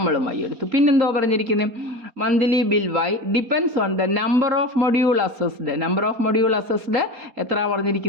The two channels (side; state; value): left; late; 4.3 ms